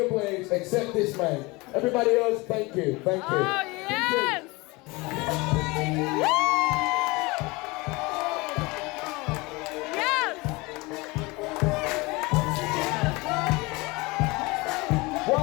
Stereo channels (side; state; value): right; quieter; 24.3 dB